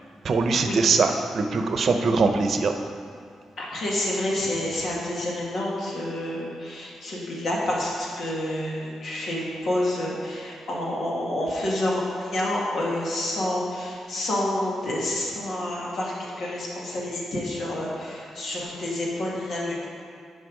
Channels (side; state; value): both; normal; correlation 0.82